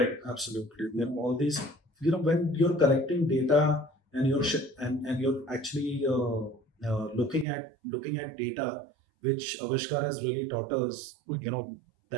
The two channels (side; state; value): left; drops out; at 7.5 s